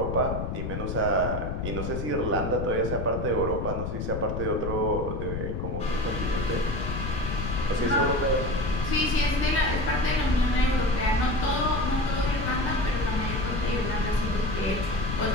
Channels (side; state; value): left; noise; rumble, 3 dB below the sound